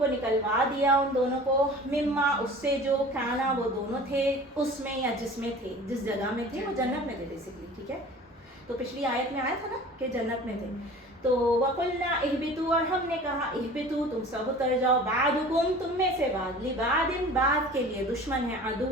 نکلوا دیا, ان دونوں کو, مما, اس سے جو, کانا, وہ دونوں تھے, اس میں یا جس میں تھے, جس جگہ میں تھے, وہ جنت میں تھے بیسکلی, ٹھیک ہے. تو پچھلی آیت میں آیا تھا نا کہ جنت میں تھے. تو وقلنا اہبطوا, اور ہم نے کہا اہبطوا, تم سب اتر جاؤ, بعدکم, تم میں سے بعد, لبعض, بعد کے لیے, دشمن ہے,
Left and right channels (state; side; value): normal; both; correlation 0.42